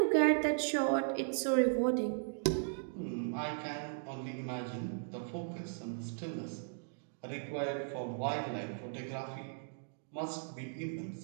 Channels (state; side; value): silent; left; digital silence